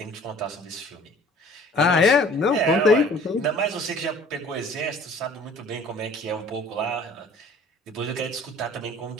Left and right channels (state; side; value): normal; both; correlation 0.51